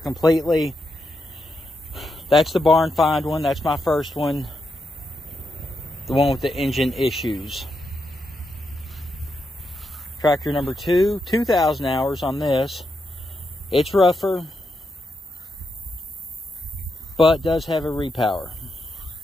That's the barn find one. That's my first one. The one with the engine issues. Tractor number 2, 2,000 hours on this. It's rougher, but does have a repower.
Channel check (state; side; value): normal; both; correlation 0.84